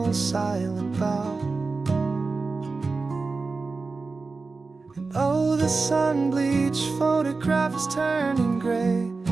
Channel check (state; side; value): quieter; left; 4.0 dB